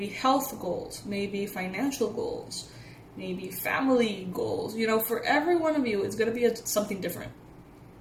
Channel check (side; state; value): both; identical; correlation 1.00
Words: health goals, maybe financial goals, maybe family goals. For every one of you, it's going to be something different.